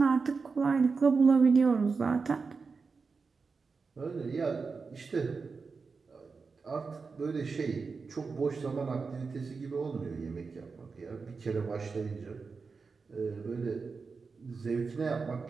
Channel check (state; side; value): quieter; left; 4.7 dB